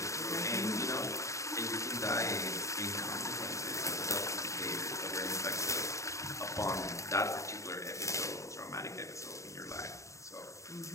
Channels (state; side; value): late; right; 0.15 ms